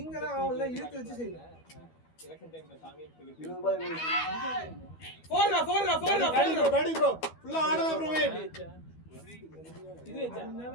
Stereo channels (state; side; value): late; right; 12 ms